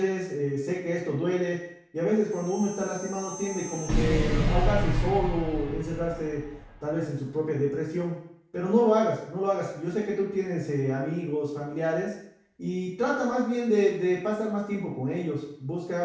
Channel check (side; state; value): both; identical; correlation 1.00